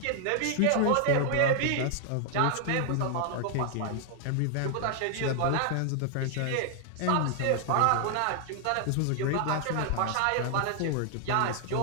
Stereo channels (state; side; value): different; both; correlation 0.00